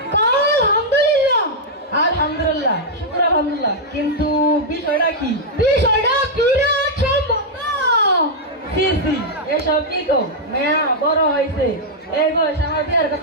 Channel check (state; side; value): normal; both; correlation -0.05